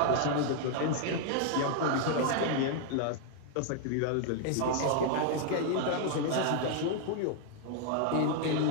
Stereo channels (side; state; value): both; different; correlation 0.00